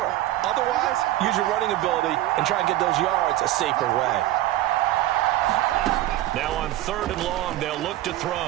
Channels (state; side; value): quieter; left; 15.0 dB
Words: Otherwise, use your running ability and try and get those yards a safer way. Now on 3rd and long, they'll look to